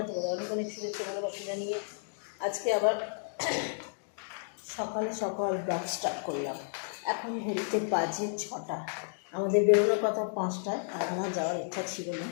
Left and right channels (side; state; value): right; silent; digital silence